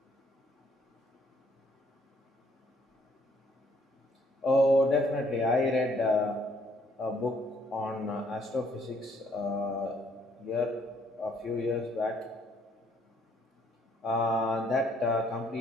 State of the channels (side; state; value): both; normal; correlation 0.66